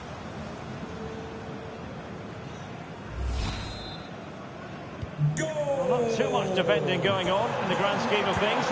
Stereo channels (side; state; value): both; identical; correlation 1.00